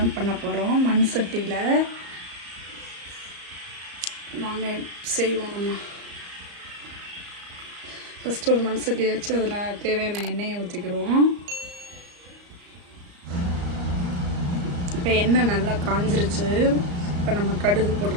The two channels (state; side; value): late; left; 34 ms